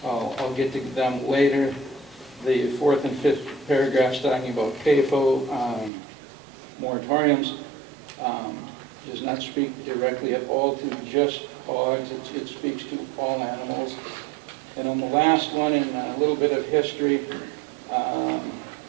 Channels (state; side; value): drops out; left; at 5.9 s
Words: get to them later. The 4th and 5th paragraphs talking about CAFO moratoriums. does not speak directly at all to just hogs, it speaks to all animals. And on the last one, in a little bit of history,